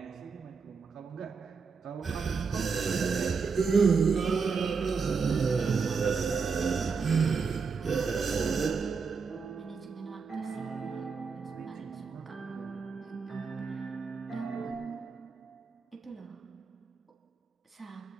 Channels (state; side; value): quieter; left; 5.3 dB